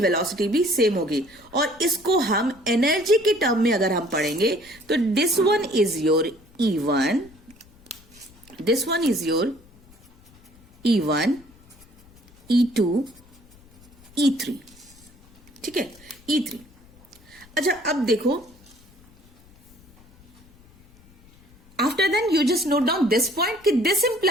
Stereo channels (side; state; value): left; noise; rumble, 27 dB below the sound